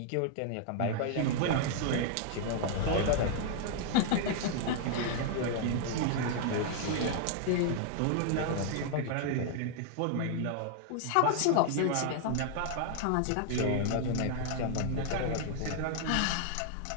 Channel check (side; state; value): both; different; correlation 0.00